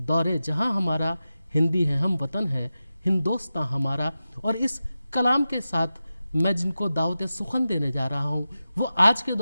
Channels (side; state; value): both; inverted; correlation -0.93